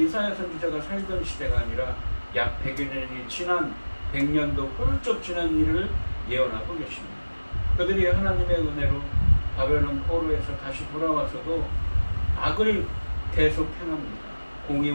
선지자가 살던 시대가 아니라 약 100여 년이 지난 100년도 훌쩍 지난 일을 예언하고 계십니다. 그들이 하나님의 은혜로 바벨론 포로에서 다시 돌아와서도 악을 계속 행합니다.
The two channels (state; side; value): inverted; both; correlation -1.00